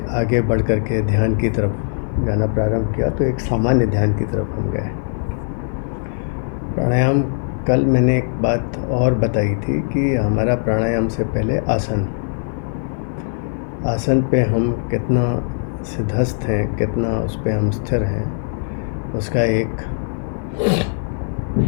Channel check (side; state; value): right; silent; digital silence